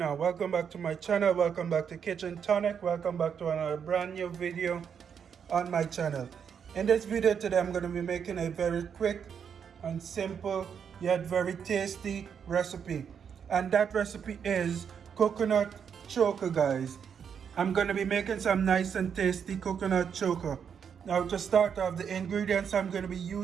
on? Welcome back to my channel. Welcome back to Kitchen Tonic. Welcome back to another brand new video on my channel. In this video today, I'm going to be making a very quick and simple yet very tasty recipe. And that recipe is coconut choker, guys. I'm going to be making some nice and tasty coconut choker. Now to start off, the ingredients I'm going to be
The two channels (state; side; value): quieter; left; 7.4 dB